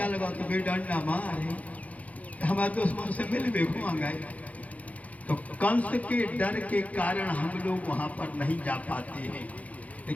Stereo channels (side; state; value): right; late; 0.070 ms